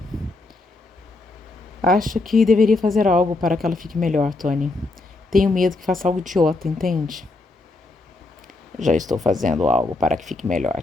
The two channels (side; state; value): right; quieter; 3.2 dB